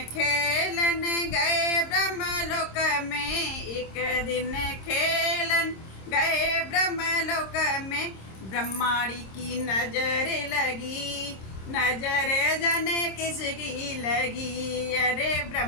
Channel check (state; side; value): late; right; 26 ms